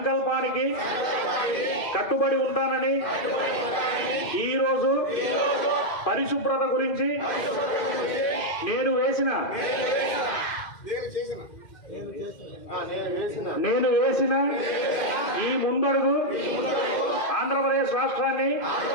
కట్టుబడి ఉంటానని ఈరోజు పరిశుభ్రత గురించి నేను వేసిన ఈ ముందడుగు ఆంధ్రప్రదేశ్ రాష్ట్రాన్ని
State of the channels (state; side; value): late; right; 2.1 ms